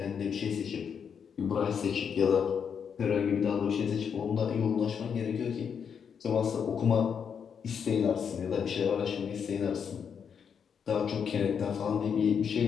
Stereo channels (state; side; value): quieter; right; 7.1 dB